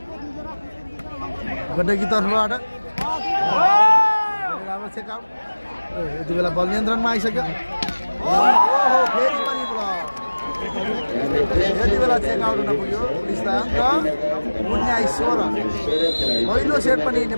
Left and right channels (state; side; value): inverted; both; correlation -1.00